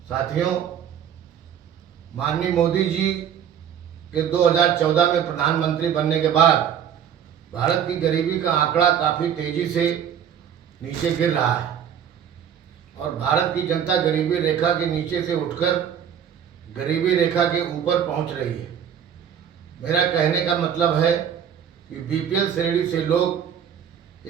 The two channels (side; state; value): left; quieter; 8.7 dB